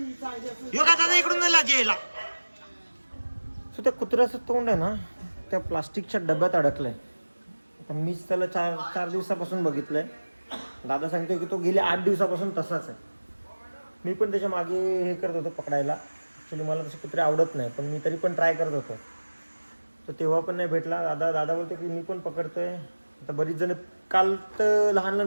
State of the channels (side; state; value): both; inverted; correlation -1.00